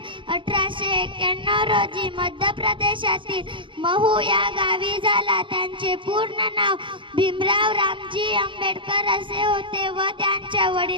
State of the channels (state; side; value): late; left; 0.24 ms